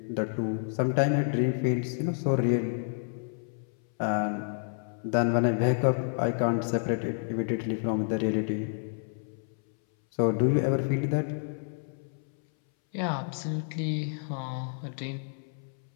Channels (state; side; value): silent; right; 58 dB below the other